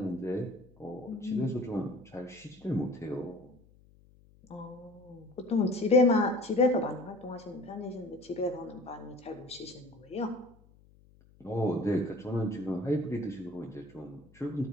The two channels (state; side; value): noise; left; hum, 27 dB below the sound